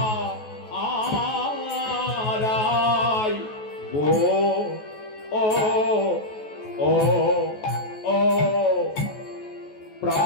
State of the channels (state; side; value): late; right; 14 ms